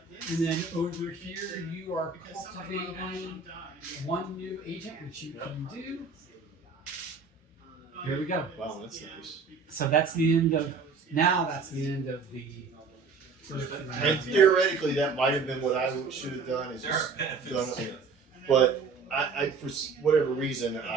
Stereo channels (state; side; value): quieter; left; 4.8 dB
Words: And then over here, you are cultivating 1 new agent, which you can do. There we go. Wow, that's nice. So that's the end of, that's the end of the first And round. theoretically, that might have been what I should have done. Is There just are done benefits. it. But I, for whatever reason,